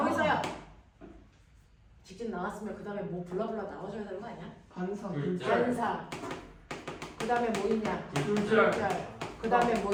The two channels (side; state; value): both; identical; correlation 1.00